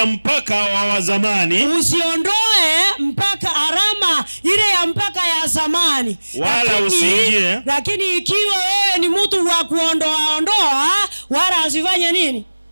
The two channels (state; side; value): inverted; both; correlation -1.00